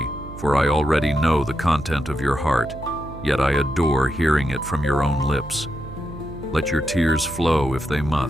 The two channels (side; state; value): right; noise; hum, 13 dB below the sound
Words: for I already know the content of your heart, yet I adore hearing it from your own lips. Let your tears flow if they